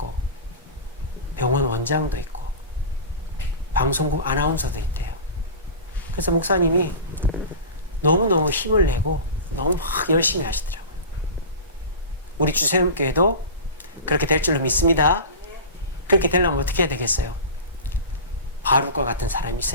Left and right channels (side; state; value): both; inverted; correlation -0.30